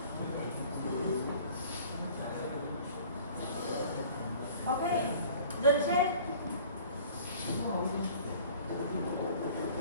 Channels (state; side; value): inverted; both; correlation -0.48